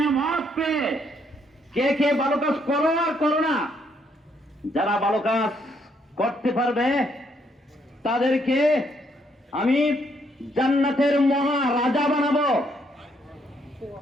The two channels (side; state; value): both; normal; correlation 0.72